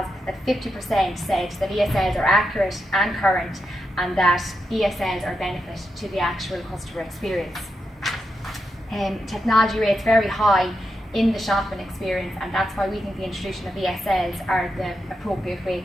that 50% said that ESLs are accurate and current, and that ESLs are benefit to the actual customer experience. Technology rates very high in the shopping experience, and that's why we think the introduction of ESLs are the appropriate way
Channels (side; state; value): both; normal; correlation 0.86